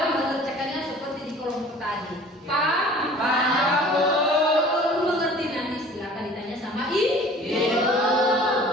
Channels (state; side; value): normal; both; correlation 0.47